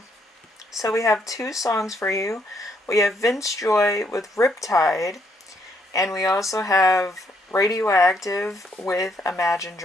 so we have two songs for you. We have Vance Joy with Riptide, and we also have Radioactive with Imagine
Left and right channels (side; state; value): both; normal; correlation 0.72